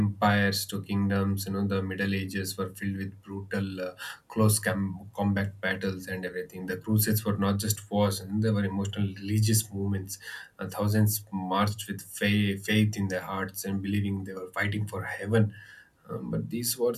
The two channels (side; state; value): both; identical; correlation 1.00